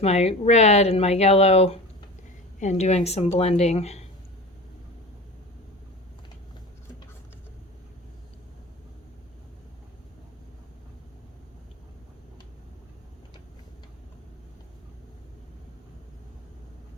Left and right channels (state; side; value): normal; both; correlation 0.33